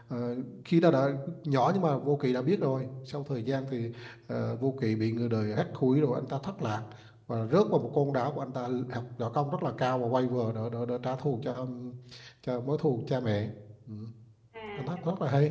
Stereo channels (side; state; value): both; identical; correlation 1.00